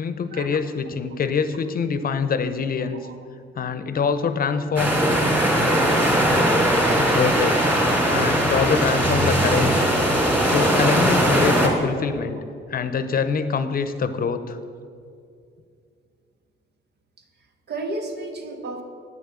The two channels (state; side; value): normal; both; correlation 0.50